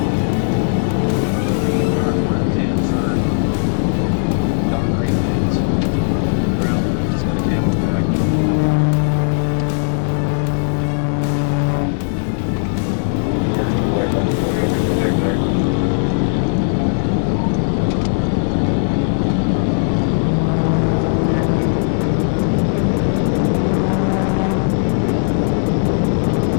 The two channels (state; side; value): silent; right; digital silence